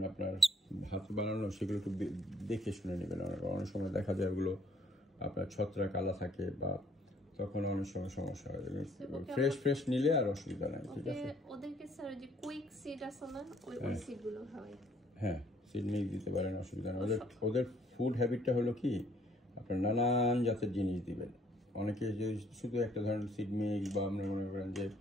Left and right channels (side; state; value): both; normal; correlation 0.63